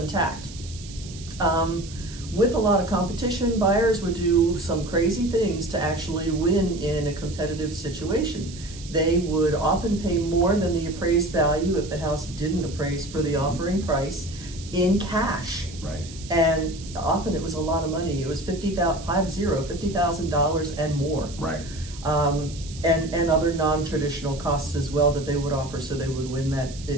With a lot of competition, buyers would do some crazy things to actually win in a competitive situation. They would often pay more than the appraised value if the house didn't appraise for the offering price in cash. Right. And often it was a lot of money. It was $50,000 and more. Right. And other non-traditional costs as well that they would offer, so they would win that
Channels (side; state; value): right; noise; hiss, 16 dB below the sound